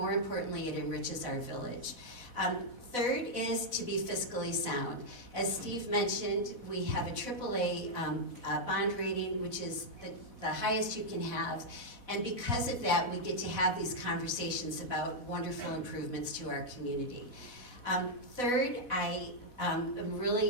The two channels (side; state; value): right; late; 4.1 ms